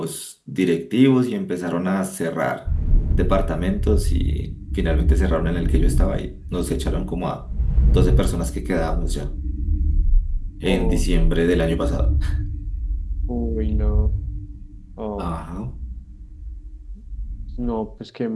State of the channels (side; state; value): both; identical; correlation 1.00